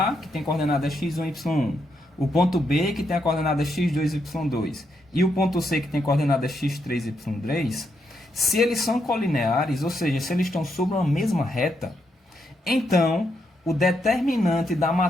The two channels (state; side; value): normal; both; correlation 0.79